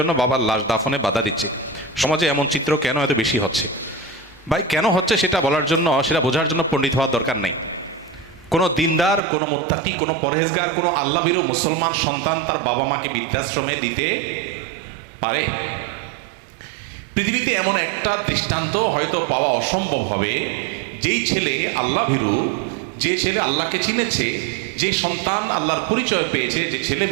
বাবার লাশ দাফনে বাধা দিচ্ছে। সমাজে এমন চিত্র কেন এত বেশি হচ্ছে? ভাই, কেন হচ্ছে সেটা বলার জন্য, সেটা বোঝার জন্য পণ্ডিত হওয়ার দরকার নেই। কোনো দিনদার, কোনো মুত্তাকি, কোনো পরহেজগার, কোনো আল্লাহভীরু মুসলমান সন্তান তার বাবা মাকে বৃদ্ধাশ্রমে দিতে পারে? পৃথিবীতে এমন একটা দৃষ্টান্ত হয়তো পাওয়া অসম্ভব হবে, যেই ছেলে আল্লাহভীরু, যে ছেলে আল্লাহকে চিনেছে, যে সন্তান আল্লাহর পরিচয় পেয়েছে, যে ছেলে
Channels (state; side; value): drops out; left; at 9.2 s